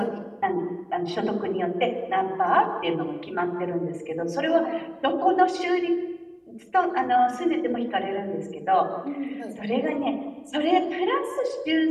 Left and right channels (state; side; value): identical; both; correlation 1.00